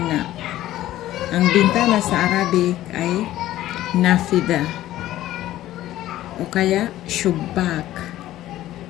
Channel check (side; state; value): right; quieter; 14.3 dB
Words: Ang bintana sa Arabic ay nafida o kaya shubak.